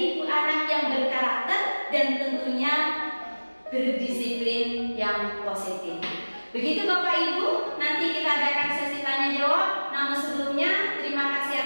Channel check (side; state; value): both; inverted; correlation -1.00